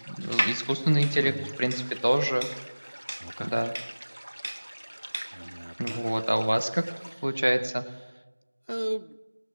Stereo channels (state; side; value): inverted; both; correlation -1.00